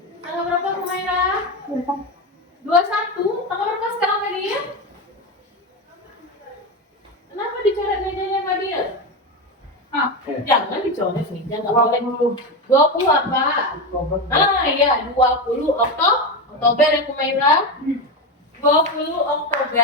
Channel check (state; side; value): normal; both; correlation 0.16